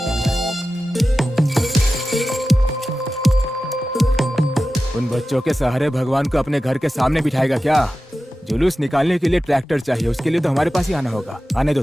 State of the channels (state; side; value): normal; both; correlation 0.94